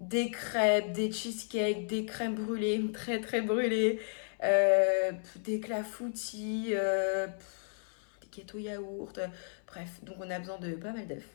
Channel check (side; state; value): right; silent; 55 dB below the other